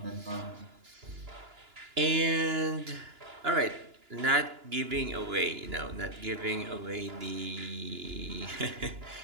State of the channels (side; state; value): left; late; 2.9 ms